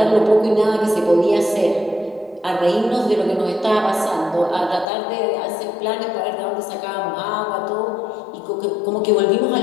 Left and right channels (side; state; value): right; drops out; at 4.9 s